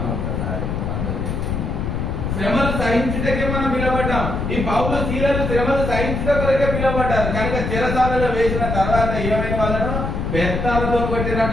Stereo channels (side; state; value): left; noise; rumble, 2 dB below the sound